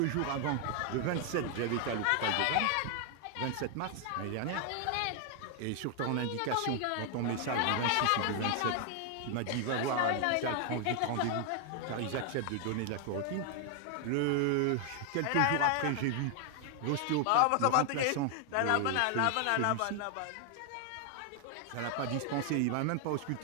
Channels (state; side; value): different; both; correlation 0.00